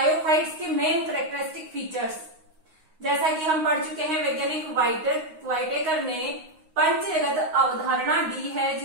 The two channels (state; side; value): late; left; 9.6 ms